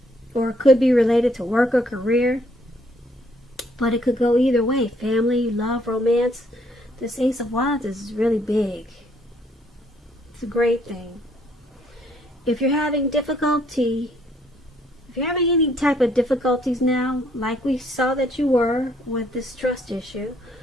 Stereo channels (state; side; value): normal; both; correlation 0.67